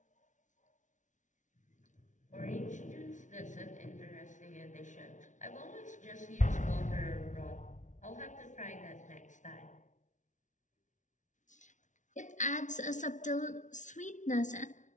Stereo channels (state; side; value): late; right; 0.37 ms